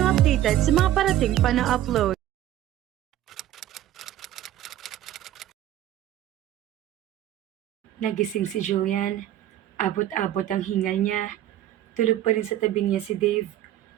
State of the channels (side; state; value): left; quieter; 12.6 dB